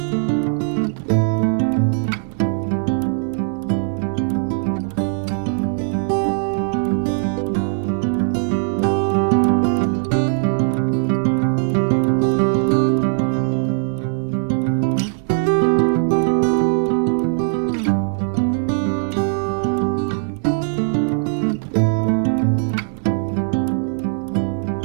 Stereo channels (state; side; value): silent; left; digital silence